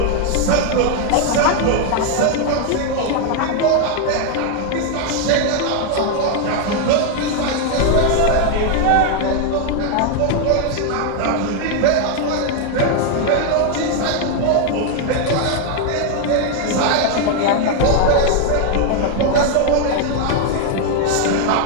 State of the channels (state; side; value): different; both; correlation 0.01